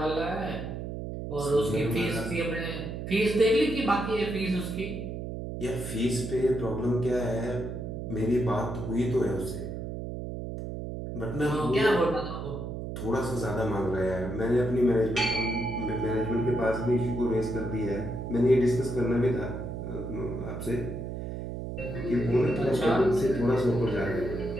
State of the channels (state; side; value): noise; right; hum, 6 dB below the sound